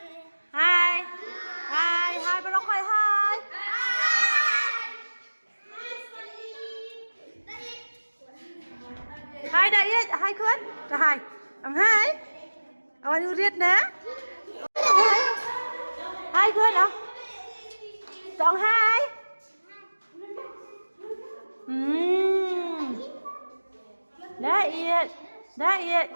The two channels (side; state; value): both; inverted; correlation -1.00